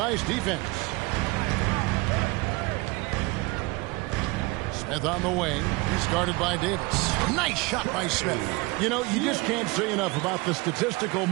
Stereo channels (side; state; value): left; quieter; 24.6 dB